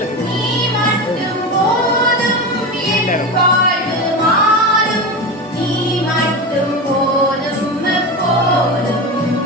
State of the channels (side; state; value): both; normal; correlation 0.22